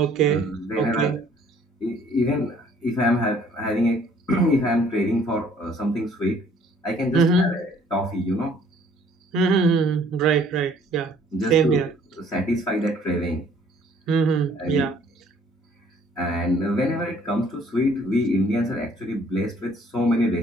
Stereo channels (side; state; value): both; normal; correlation 0.59